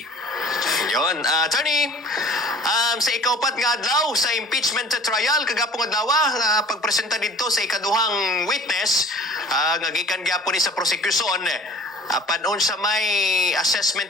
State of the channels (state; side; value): normal; both; correlation 0.46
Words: Yon, attorney, sa ikaupat nga adlaw sa impeachment trial kagapong adlaw pagpresenta dito sa ikaduhang witness nga gikan gyapon ni sa prosecution. Panon sa may